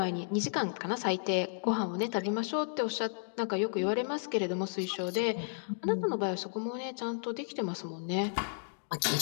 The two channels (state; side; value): silent; right; digital silence